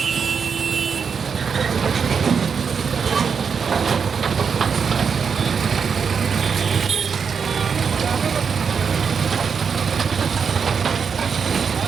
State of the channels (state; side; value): quieter; left; 6.2 dB